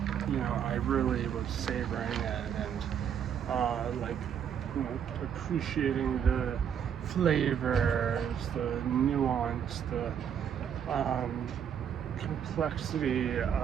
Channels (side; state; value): left; quieter; 8.4 dB